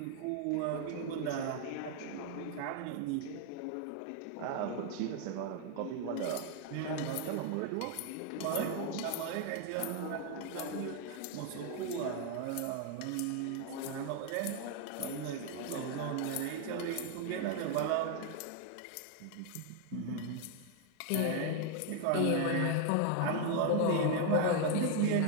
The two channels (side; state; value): both; different; correlation 0.00